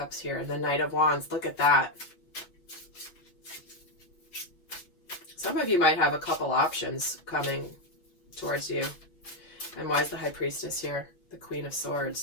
here? And the Knight of Wands. Look at that. Some of you might have a couple options coming towards you. And why is the High Priestess here? The Queen of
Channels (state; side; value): late; right; 6.6 ms